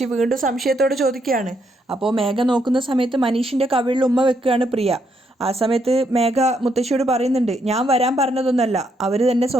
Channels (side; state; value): both; normal; correlation 0.75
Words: വീണ്ടും സംശയത്തോടെ ചോദിക്കുകയാണ്. അപ്പോൾ മേഘ നോക്കുന്ന സമയത്ത് മനീഷിൻ്റെ കവിളിൽ ഉമ്മ വെക്കുകയാണ് പ്രിയ. ആ സമയത്ത് മേഘ മുത്തശ്ശിയോട് പറയുന്നുണ്ട്, ഞാൻ വരാൻ പറഞ്ഞതൊന്നല്ല, അവർ തന്നെ